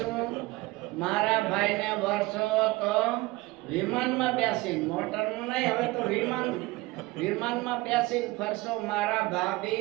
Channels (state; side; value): quieter; left; 21.1 dB